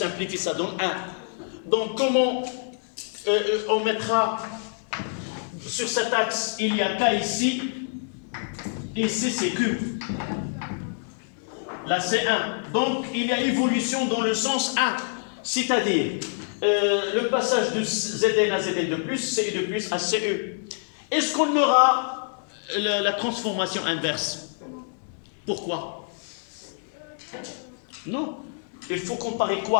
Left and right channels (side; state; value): right; silent; digital silence